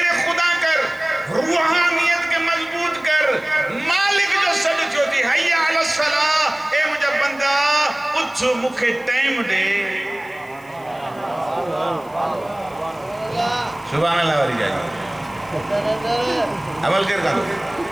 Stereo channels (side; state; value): left; noise; hiss, 27 dB below the sound